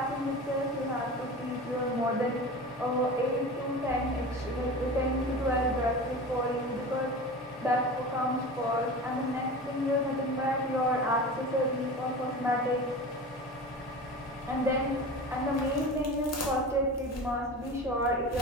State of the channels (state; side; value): normal; both; correlation 0.32